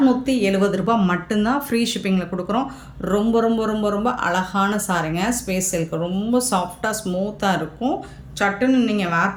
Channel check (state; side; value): identical; both; correlation 1.00